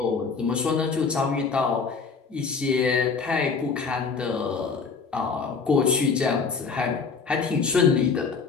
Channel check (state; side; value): quieter; right; 5.2 dB